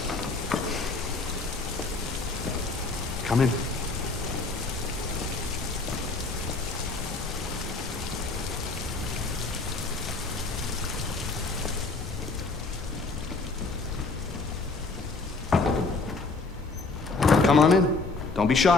Come in. Come on in. Don't be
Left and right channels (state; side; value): quieter; right; 3.7 dB